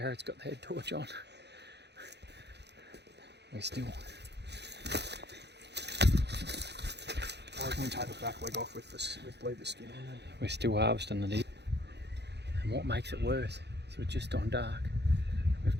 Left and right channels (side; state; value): left; late; 0.49 ms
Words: got the head torch on. We're still. I reckon we take the back leg off with leave the skin on. We're still harvesting the deer. And what makes it worse is we're just on dark. We've